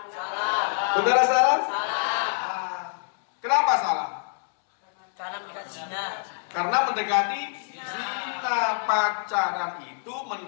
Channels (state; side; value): silent; right; 61 dB below the other